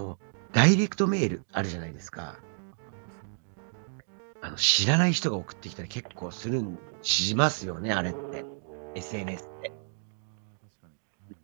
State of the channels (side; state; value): left; silent; digital silence